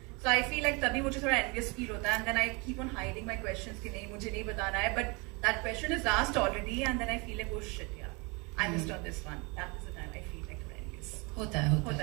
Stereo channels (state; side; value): quieter; left; 29.2 dB